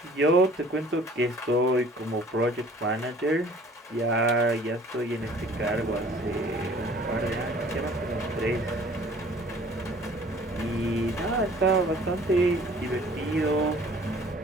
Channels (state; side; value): normal; both; correlation 0.52